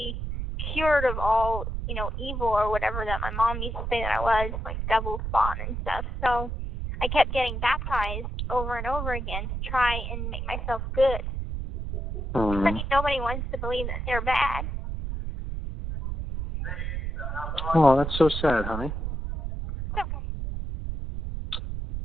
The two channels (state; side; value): noise; right; rumble, 4 dB below the sound